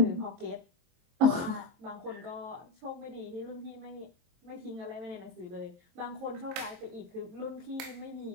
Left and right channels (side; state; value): left; late; 23 ms